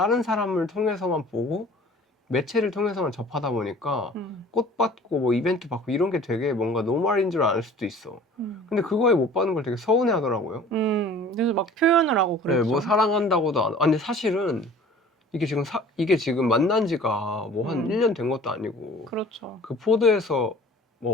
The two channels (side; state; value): both; normal; correlation 0.47